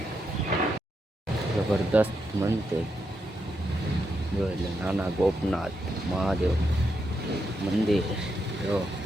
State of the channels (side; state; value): both; normal; correlation 0.83